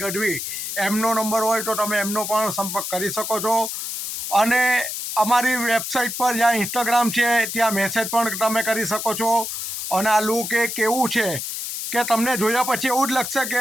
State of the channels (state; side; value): noise; left; hiss, 5 dB below the sound